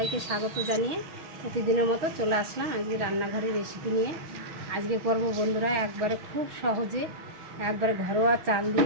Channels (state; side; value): late; left; 6.4 ms